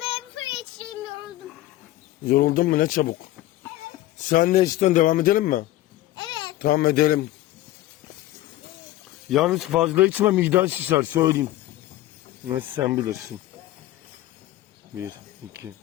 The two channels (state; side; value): quieter; right; 15.6 dB